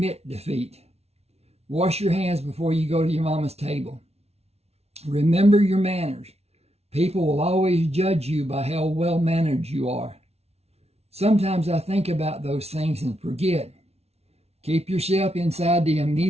defeat. Wash your hands before you go to your mama's table. Remember your manners. People will always judge you by how well-mannered you are. Sometimes I think about those things and forget. Keep yourself inside the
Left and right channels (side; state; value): left; late; 0.31 ms